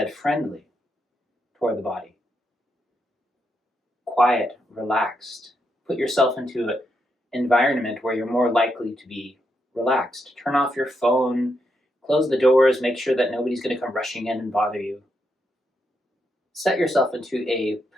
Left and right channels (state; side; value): normal; both; correlation 0.81